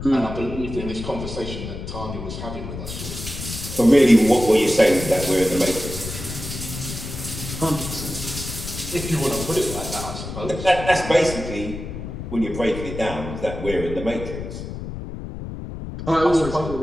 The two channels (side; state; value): left; noise; rumble, 8 dB below the sound